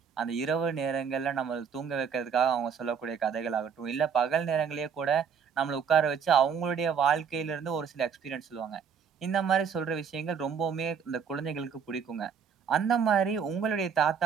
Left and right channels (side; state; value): left; quieter; 6.7 dB